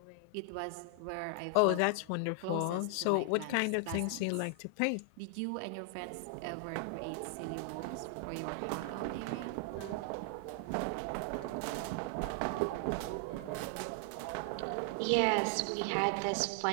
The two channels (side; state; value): both; different; correlation 0.00